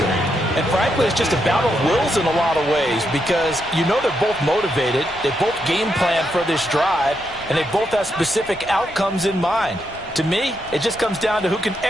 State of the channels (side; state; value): left; noise; rumble, 20 dB below the sound